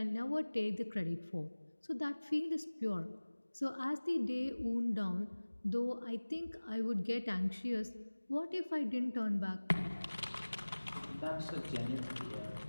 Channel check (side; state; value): both; inverted; correlation -1.00